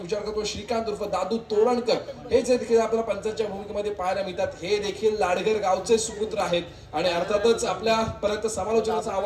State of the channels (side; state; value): both; identical; correlation 1.00